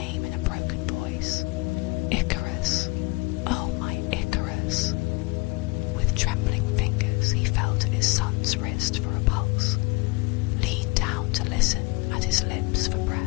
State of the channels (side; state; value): right; quieter; 25.7 dB